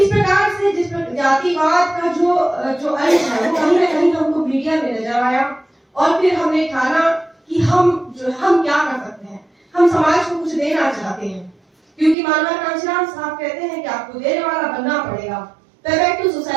प्रकार से जिस जातिवाद का जो अंश है वो कहीं ना कहीं हमको मीडिया में नजर आया और फिर हमने ठाना कि हम क्या कर सकते हैं, हम समाज को कुछ देना चाहते हैं, क्योंकि मानव कांशीराम साहब कहते हैं कि आपको देने वाला बनना पड़ेगा, बैक टू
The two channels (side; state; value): left; drops out; at 12.2 s